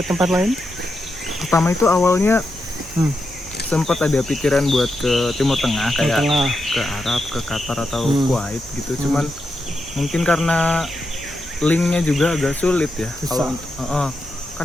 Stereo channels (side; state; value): both; normal; correlation 0.86